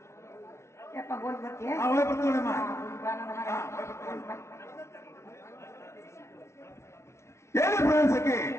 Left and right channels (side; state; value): right; late; 0.13 ms